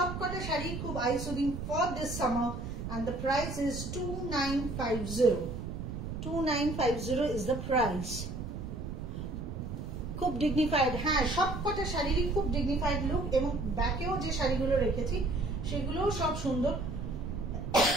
শাড়ি খুব eye soothing for this summer, and the price is 2950. 2950 is the price. খুব ডিগনিফাইড, হ্যাঁ সবকটা শাড়িরই খুব ডিগনিফাইড লুক, এবং ব্যাকেও যে শাড়িগুলো রেখেছি সেগুলোও সব সুন্দর।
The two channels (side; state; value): right; noise; rumble, 6 dB below the sound